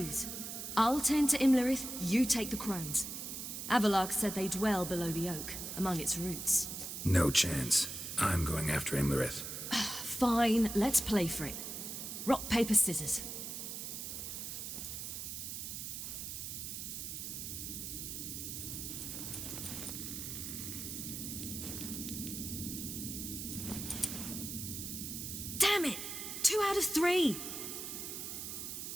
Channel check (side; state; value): right; noise; hiss, 6 dB below the sound